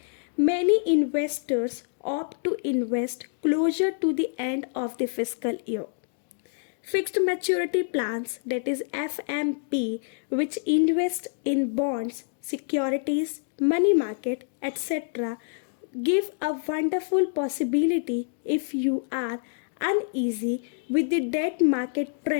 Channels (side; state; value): right; silent; digital silence